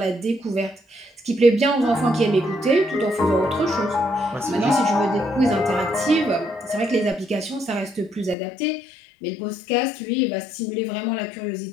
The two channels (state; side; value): drops out; right; at 8.3 s